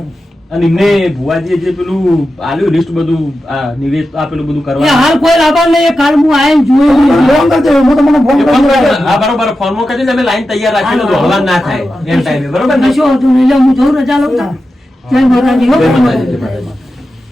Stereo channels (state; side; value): normal; both; correlation 0.91